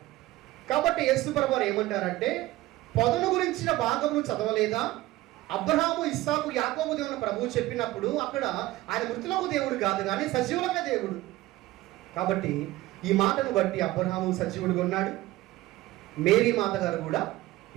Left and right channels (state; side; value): quieter; left; 17.4 dB